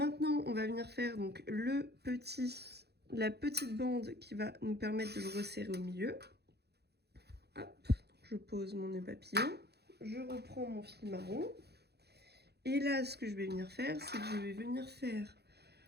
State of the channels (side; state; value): left; late; 0.48 ms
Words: on va venir faire donc la petite bande qui va nous permettre de le resserrer au milieu. Hop, je pose mon nœud papillon. Je reprends mon fil marron. Et là, ce que je vais venir faire, c'est que je vais venir faire